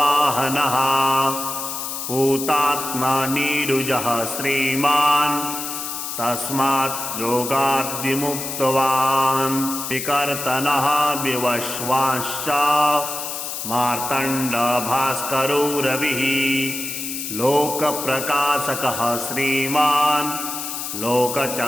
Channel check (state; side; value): noise; left; hiss, 5 dB below the sound